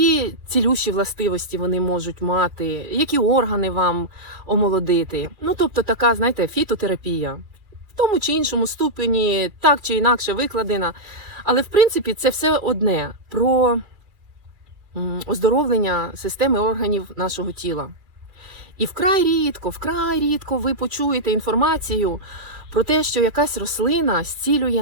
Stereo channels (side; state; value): left; late; 2.4 ms